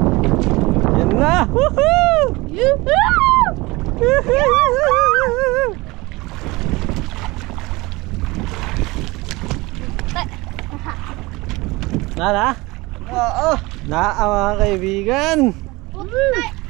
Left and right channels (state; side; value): quieter; left; 22.5 dB